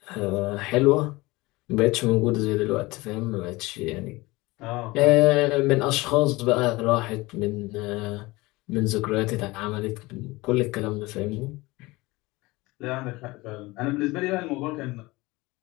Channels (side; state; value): right; quieter; 21.7 dB